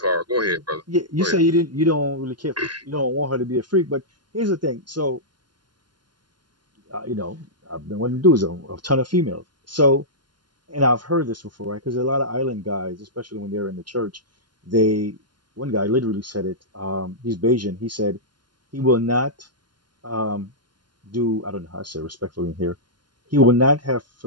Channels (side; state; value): left; late; 0.71 ms